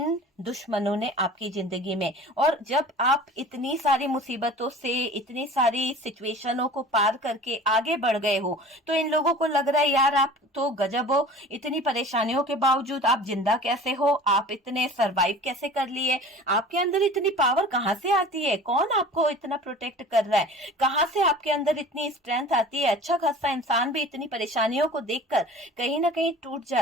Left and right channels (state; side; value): normal; both; correlation 0.42